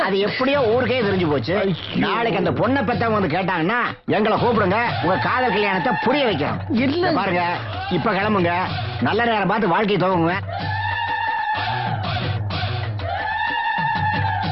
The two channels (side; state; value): both; identical; correlation 1.00